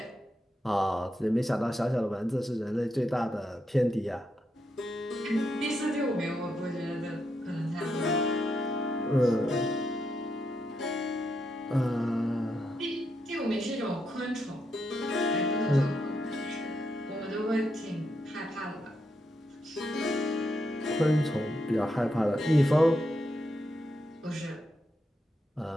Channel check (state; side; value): normal; both; correlation 0.82